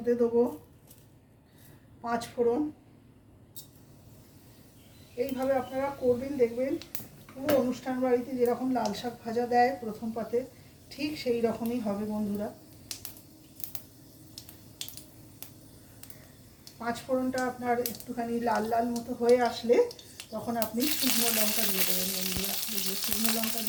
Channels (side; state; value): both; identical; correlation 1.00